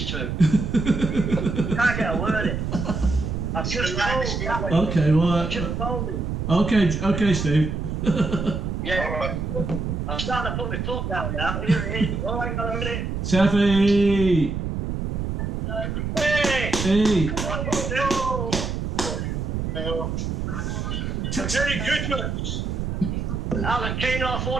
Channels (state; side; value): noise; right; rumble, 2 dB below the sound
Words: two. Can't get a word in. I've just told. Okay, well. Just told him. Okay, Steve. Yeah. I'm starting to put my foot down now. Here it is. Oh, hang on a minute. Taffy! Hey! Hey! Merry Christmas! Alan, clean off all